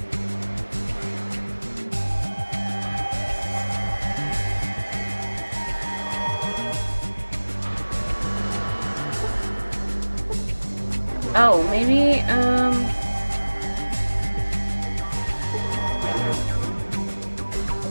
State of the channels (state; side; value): inverted; both; correlation -1.00